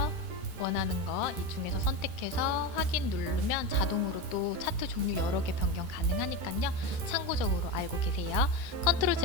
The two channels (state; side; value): late; left; 13 ms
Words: 원하는 거 이 중에서 선택해서 확인 누르면 자동으로 또 차트 종류 여러 개 변경 가능하니까요. 참고적으로 알고 계세요. 컨트롤